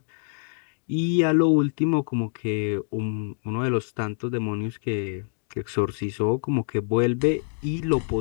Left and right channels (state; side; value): silent; right; digital silence